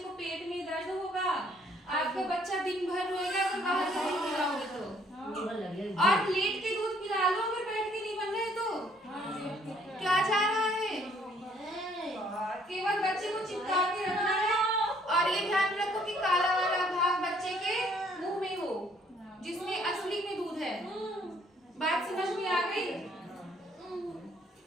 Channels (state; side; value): normal; both; correlation 0.63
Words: पेट में दर्द होगा, आपका बच्चा दिन भर रोएगा अगर बाहर से नहीं पिलाओगे तो। और लेट के दूध पिला लो अगर बैठ के नहीं बन रहे तो। क्या जा रहा है? केवल बच्चे को चिपका के रखना है, और ये ध्यान रखो कि काला वाला भाग बच्चे के मुंह में हो, जिसमें असली में दूध है। बात समझ में आ गई?